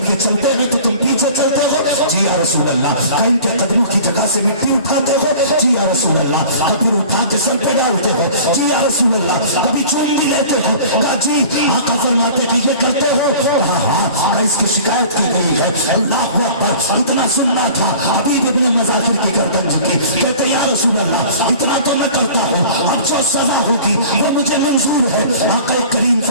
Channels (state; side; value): inverted; both; correlation -0.44